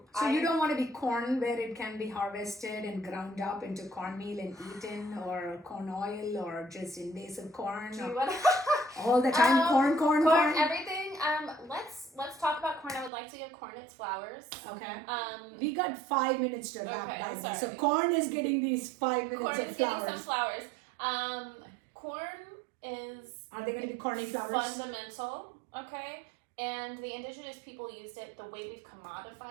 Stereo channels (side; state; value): left; drops out; at 13.1 s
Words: So you don't want to be corn where it can be harvested and ground up into cornmeal and eaten, or corn oil, or just invasive corn. Do or you want all the time, corn. corn? Everything. Let's talk about corn. I would like to give corn its flowers. Okay. We We got 5 minutes to wrap Okay, that. sorry. So corn is getting these 5 minutes corn of is getting flowers. some flowers. Corn is Are they going to be corny flowers? fundamental. Okay, and the indigenous people used it. The way we've